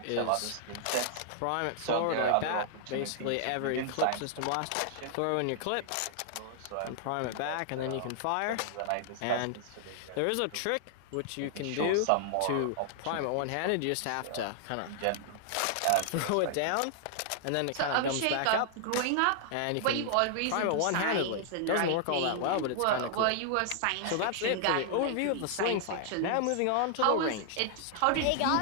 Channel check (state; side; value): different; both; correlation -0.01